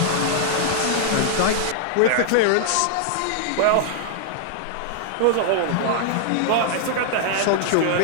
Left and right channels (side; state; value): both; different; correlation -0.01